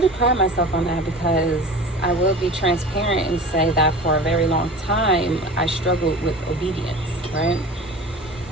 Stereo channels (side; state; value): both; normal; correlation 0.36